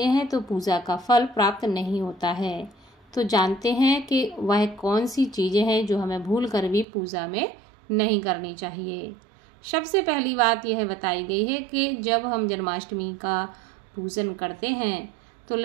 हैं तो पूजा का फल प्राप्त नहीं होता है। तो जानते हैं कि वह कौन सी चीज़ें हैं जो हमें भूल कर भी पूजा में नहीं करनी चाहिए। सबसे पहली बात यह बताई गई है कि जब हम जन्माष्टमी का पूजन करते हैं तो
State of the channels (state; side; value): drops out; left; at 6.9 s